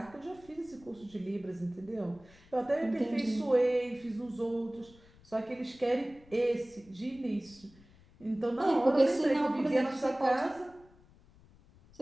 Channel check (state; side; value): noise; left; rumble, 26 dB below the sound